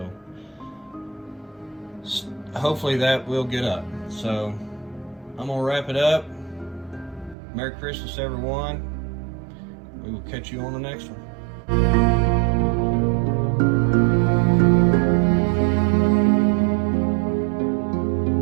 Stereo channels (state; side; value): drops out; left; at 7.4 s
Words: hopefully that will get up. So I'm gonna wrap it up. Merry Christmas, everyone. We will catch you on the next one.